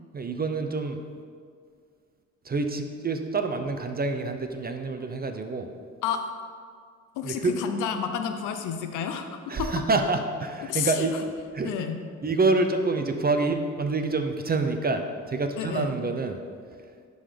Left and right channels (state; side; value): normal; both; correlation 0.28